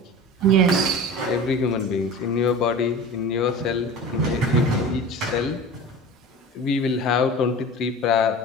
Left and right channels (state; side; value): normal; both; correlation 0.35